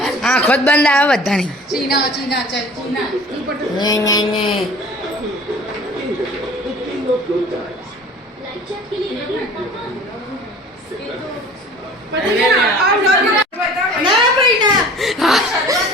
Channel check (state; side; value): normal; both; correlation 0.45